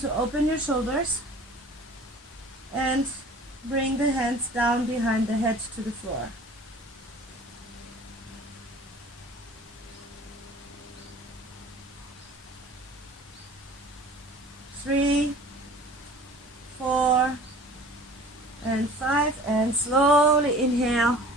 open your shoulders. And bring the hands down behind the head to the floor. 3, 4, and 5, and slowly inhale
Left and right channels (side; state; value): both; normal; correlation 0.45